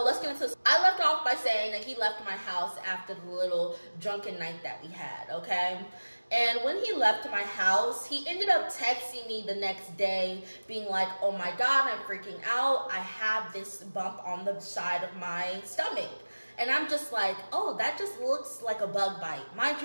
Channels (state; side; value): inverted; both; correlation -1.00